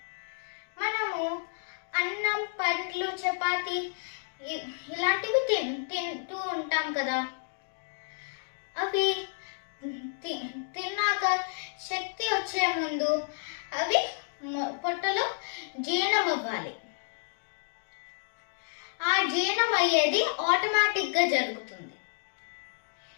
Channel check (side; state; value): right; silent; digital silence